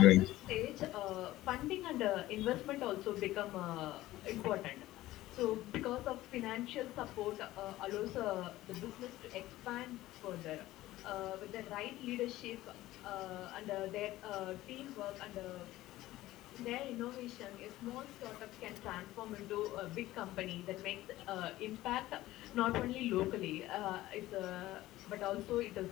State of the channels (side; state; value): right; quieter; 16.3 dB